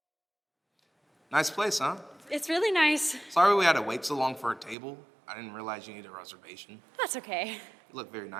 Nice place, huh? It's really nice. Sorry we had to wait so long for a table. I didn't realize you needed a reservation. That's okay. You look very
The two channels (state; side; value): drops out; left; at 4.8 s